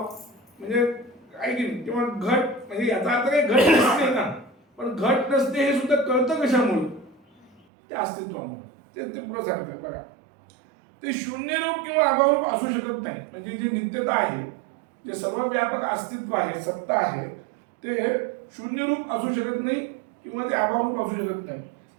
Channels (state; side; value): drops out; left; at 7.6 s